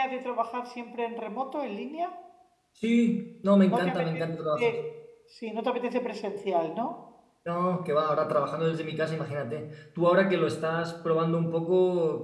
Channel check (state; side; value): identical; both; correlation 1.00